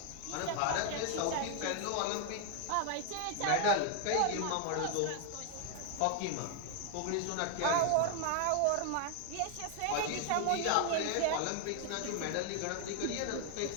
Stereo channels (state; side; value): different; both; correlation 0.00